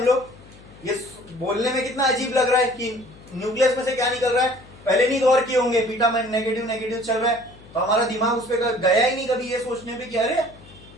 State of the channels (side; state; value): left; noise; hum, 22 dB below the sound